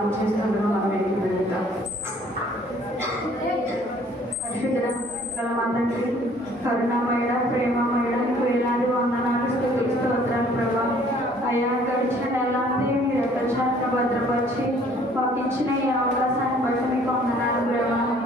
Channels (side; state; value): both; normal; correlation 0.57